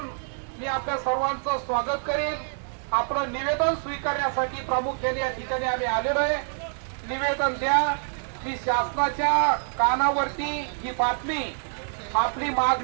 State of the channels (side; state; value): left; silent; digital silence